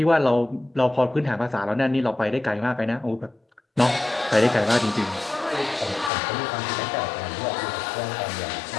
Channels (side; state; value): right; drops out; at 6.1 s